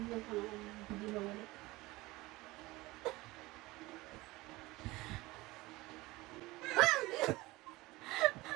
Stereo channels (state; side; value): quieter; left; 20.6 dB